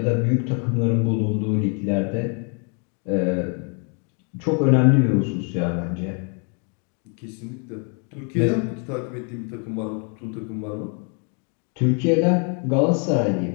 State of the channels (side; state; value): right; quieter; 38.9 dB